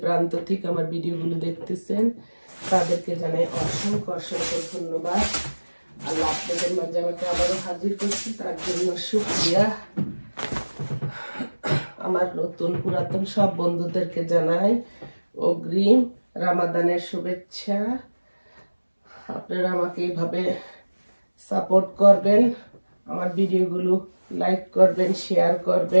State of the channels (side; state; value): both; inverted; correlation -1.00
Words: প্রান্ত থেকে আমার ভিডিওগুলো দেখতেছেন তাদেরকে জানাই অসংখ্য অসংখ্য ধন্যবাদ। আল্লাহ আপনাদের মাঝে আমাকে আবারও হাজির করছি, তার জন্য শুকরিয়া। আমার নতুন পুরাতন সব বন্ধুদেরকে জানাই অগ্রিম রামাদানের শুভেচ্ছা। আপনারা আমাকে এইভাবে সাপোর্ট করবেন, আমার ভিডিওগুলো লাইক করবেন, শেয়ার